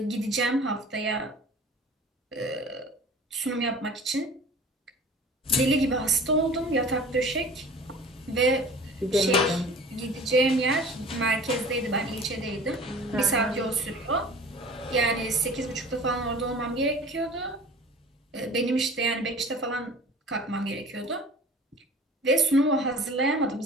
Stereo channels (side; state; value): both; normal; correlation 0.43